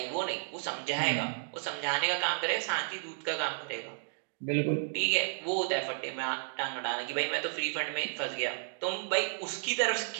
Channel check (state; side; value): silent; left; digital silence